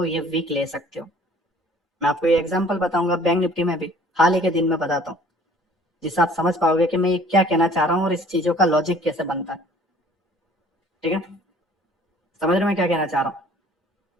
ये वीक ले सकते हो। मैं आपको ये एग्जांपल बताऊंगा बैंक निफ्टी में भी, हाल ही के दिन में बताता हूँ, जिससे आप समझ पाओगे कि मैं ये क्या कहना चाह रहा हूँ और इस चीजों का लॉजिक कैसे बनता है, ठीक है। समझ रहे मैं क्या कहना चाह रहा हूँ।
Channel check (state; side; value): normal; both; correlation 0.53